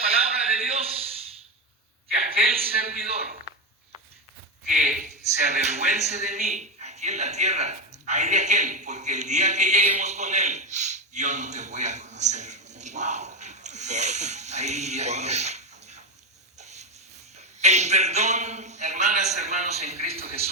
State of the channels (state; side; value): normal; both; correlation 0.13